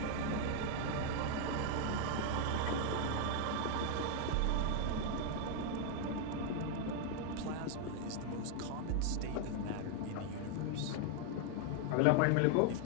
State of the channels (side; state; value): both; different; correlation 0.01